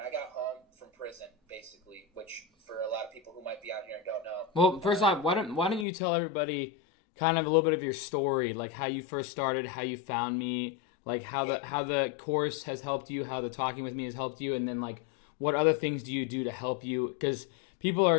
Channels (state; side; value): drops out; right; at 5.9 s